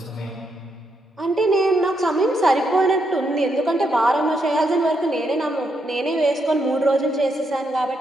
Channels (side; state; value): both; normal; correlation 0.79